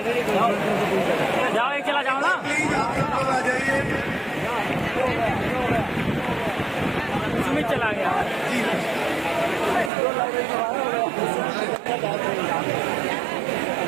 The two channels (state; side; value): drops out; left; at 9.9 s